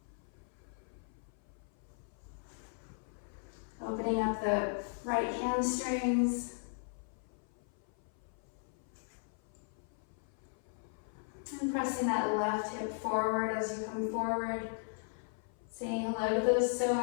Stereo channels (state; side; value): silent; right; 53 dB below the other